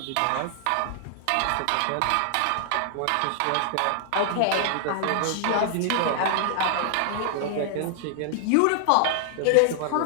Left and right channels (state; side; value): different; both; correlation 0.00